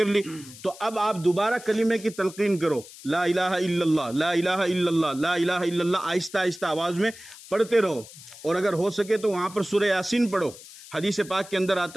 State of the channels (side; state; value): left; noise; hiss, 18 dB below the sound